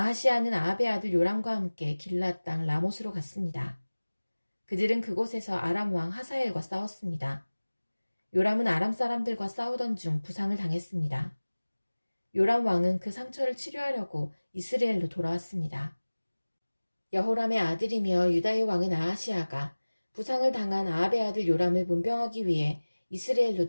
아합의 아들 요람과 함께 길앗 땅 라못으로 갔습니다. 그들은 그곳에서 아람 왕 하사엘과 싸웠습니다. 요람은 아람 사람들과 싸우던 중 부상을 당했습니다. 요람 왕은 그 상처를 치료하려고 이스라엘로 돌아왔습니다. 여호람의 아들이며 유다의 왕은 아하시아가 부상을 당한 아합의 아들 요람을 문병하기 위해 이스라엘로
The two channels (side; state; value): both; inverted; correlation -1.00